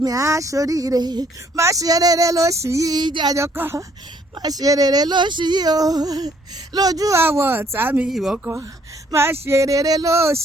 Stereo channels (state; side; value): normal; both; correlation 0.65